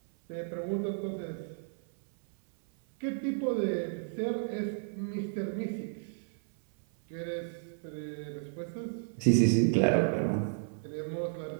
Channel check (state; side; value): silent; left; 56 dB below the other